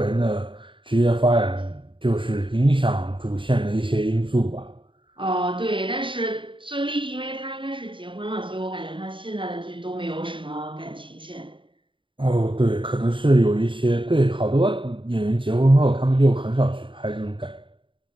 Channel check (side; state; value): left; late; 0.24 ms